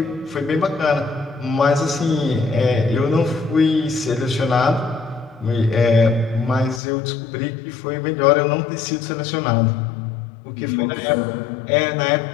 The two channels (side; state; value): right; drops out; at 6.8 s